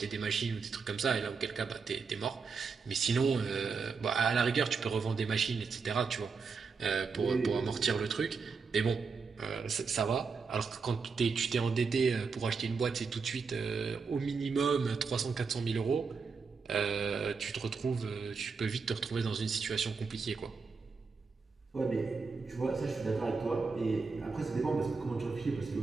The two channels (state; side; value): quieter; left; 5.0 dB